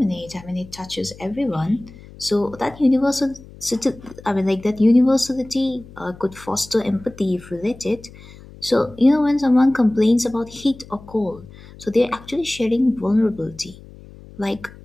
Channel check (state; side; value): noise; left; hum, 20 dB below the sound